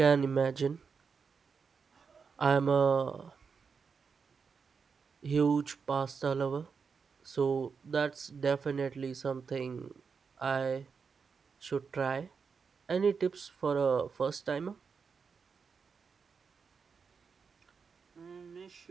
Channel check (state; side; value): quieter; left; 5.6 dB